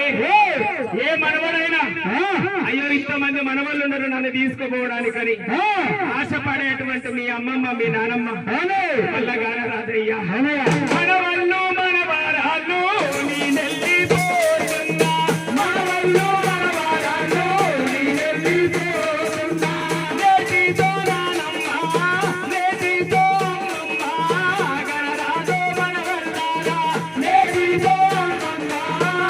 ఏ మనవడైనా అయ్యో ఇంతమంది మనవళ్ళు ఉన్నారు నన్ను తీసుకుపోవడానికని ఆశపడేటువంటి మీ అమ్మమ్మ మీ నానమ్మ వల్ల గాన రాదయ్యా మనవళ్ళు మనవరాళ్ళు నీ నెల్లిపోతున్నా మనవళ్ళు మనవరాళ్ళు నీ నెల్లిపోతున్నా నేటితో నానమ్మ నేటితో అమ్మమ్మ గనరాదో మనవల్లారా నేటితో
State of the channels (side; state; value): both; identical; correlation 1.00